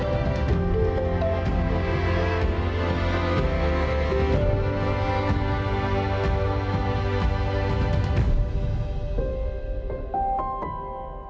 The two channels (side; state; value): both; identical; correlation 1.00